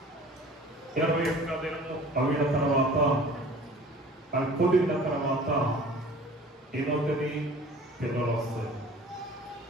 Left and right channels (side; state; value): both; normal; correlation 0.46